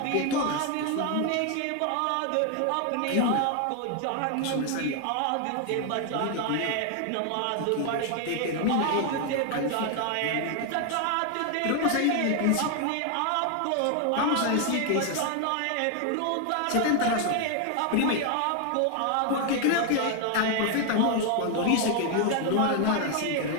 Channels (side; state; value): both; different; correlation 0.01